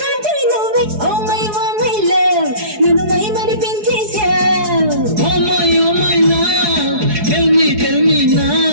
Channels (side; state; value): left; late; 4.7 ms